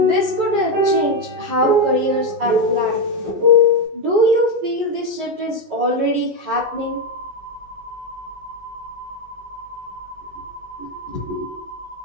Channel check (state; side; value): late; left; 20 ms